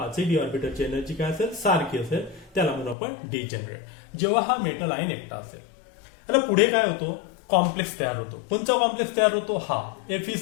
d ऑर्बिटलची energy काय असेल? सारखी असेल. त्याला म्हणून आपण डिजेनरेट. जेव्हा हा मेटल आयन एकटा असेल, त्याला पुढे काय होतो? कॉम्प्लेक्स तयार होतो. कोणता कॉम्प्लेक्स तयार होतो? हा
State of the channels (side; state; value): right; drops out; at 3.0 s